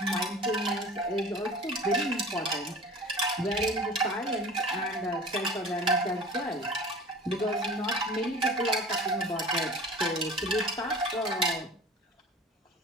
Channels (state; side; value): normal; both; correlation 0.40